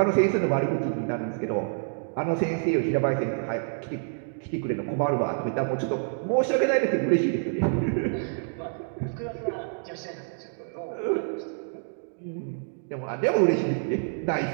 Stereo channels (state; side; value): silent; left; digital silence